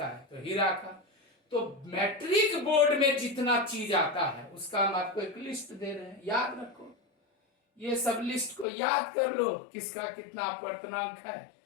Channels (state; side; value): drops out; right; at 8.7 s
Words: है? तो हीरा का। तो मैट्रिक बोर्ड में जितना चीज आता है उसका हम आपको एक लिस्ट दे रहे हैं, याद रखो। ये सब लिस्ट को याद कर लो, किसका कितना अपवर्तनांक है।